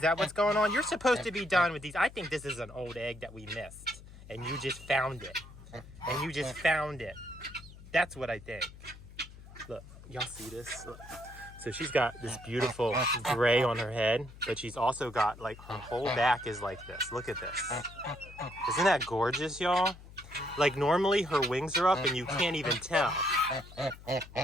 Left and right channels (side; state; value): left; noise; hum, 18 dB below the sound